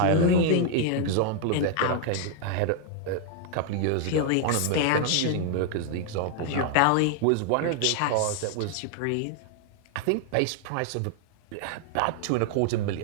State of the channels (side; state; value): both; different; correlation 0.00